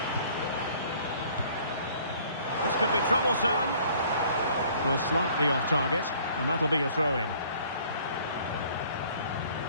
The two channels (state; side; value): inverted; both; correlation -0.55